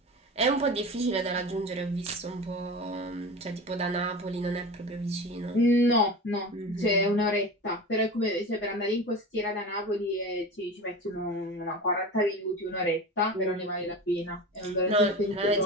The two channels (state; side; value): normal; both; correlation 0.30